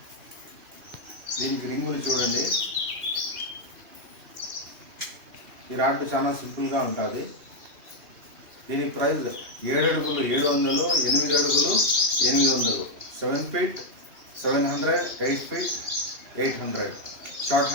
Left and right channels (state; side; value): late; left; 2.8 ms